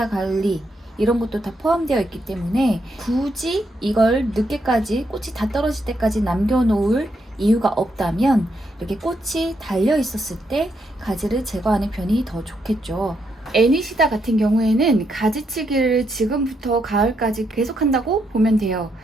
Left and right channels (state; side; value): normal; both; correlation 0.78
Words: 관리 이런 것도 다 포함되어 있기 때문에 굳이 이걸 늦게까지 꽃이 다 떨어질 때까지 남겨놓을 이유가 없다면 이렇게 꽃이 달려 있었을 때 가지를 제거하는 편이 더 좋겠죠. 애니시다 같은 경우에는 가지치기를 지금부터 가을까지 계속 한다고 보면 돼요.